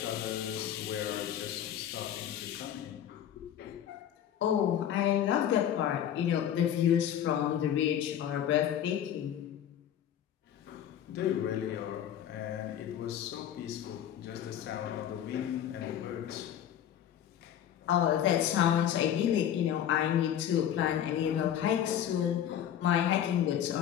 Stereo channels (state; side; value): quieter; right; 10.2 dB